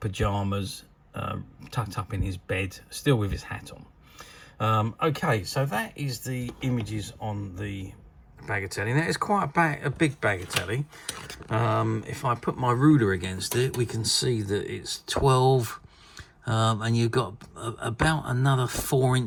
pajamas, tucked up in his bed, still with his hat on. Okay, so that is the images on the Bagatelle. Now it's quite a big Bagatelle. If I put my ruler against it, we can see that it's 12, and you've got about another 4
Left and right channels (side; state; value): both; identical; correlation 1.00